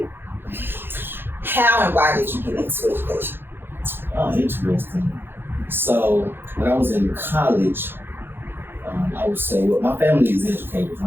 How and why did you get into education? Oh, interesting. So when I was in college, I would say, well, my family is educators. A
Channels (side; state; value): left; late; 0.10 ms